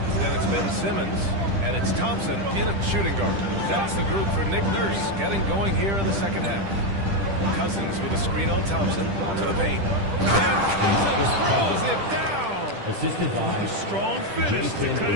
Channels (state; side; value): late; left; 10 ms